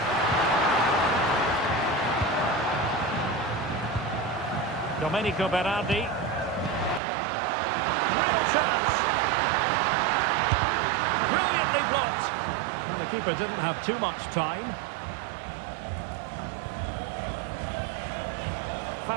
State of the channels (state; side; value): drops out; left; at 7.0 s